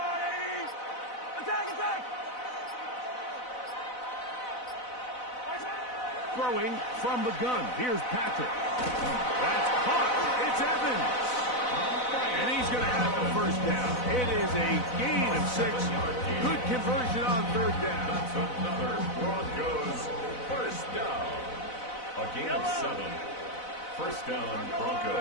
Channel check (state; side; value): late; right; 4.0 ms